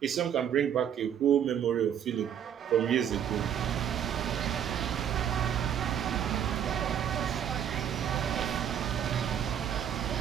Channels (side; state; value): left; quieter; 9.2 dB